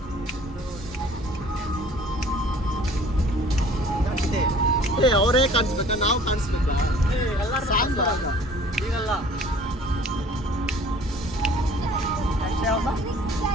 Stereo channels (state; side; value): normal; both; correlation 0.51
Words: ಅವರೇ ಕಾಣಿಸ್ಬೇಕಾ ನಾವು ಕಾಣಿಸ್ಬೇಕಾ? ಸಾಂಗ್ ಈಗಲ್ಲ